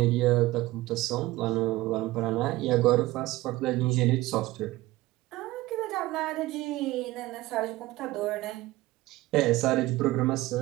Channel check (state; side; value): quieter; left; 18.1 dB